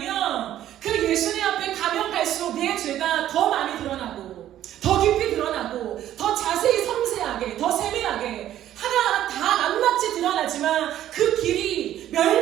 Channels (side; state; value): left; quieter; 12.2 dB